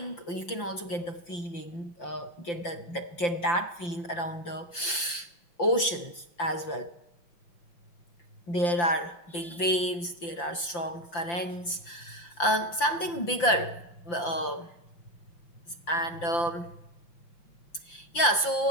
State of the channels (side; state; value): right; late; 5.8 ms